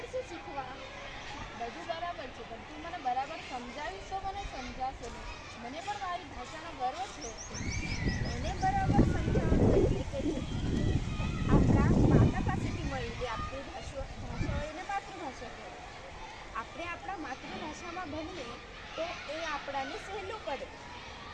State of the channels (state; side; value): identical; both; correlation 1.00